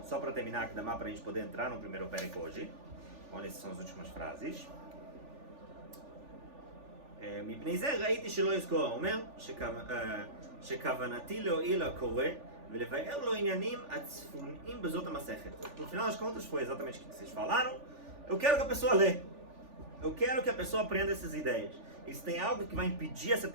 só para terminar aqui, dá para a gente poder entrar no primeiro Perek hoje. Olha, essas são as últimas frases. מפני זה ראיתי שלא יזכור, אומר שכוונתי להועיל לקורא ולבאר לו עניינים הצפוניים בזאת המסכת. No final das contas foi exatamente o que vocês falaram. Eu quero que a pessoa lê. Eu quero que a pessoa aprenda essas ideias. E se tem algo que vai impedir essa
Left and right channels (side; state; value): left; late; 3.4 ms